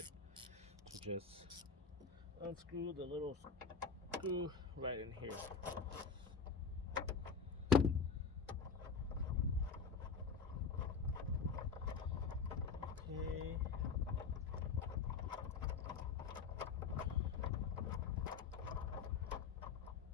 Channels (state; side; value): quieter; right; 5.5 dB